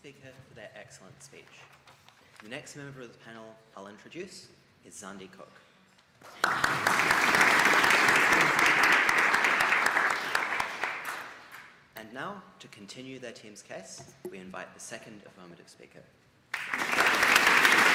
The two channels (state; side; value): identical; both; correlation 1.00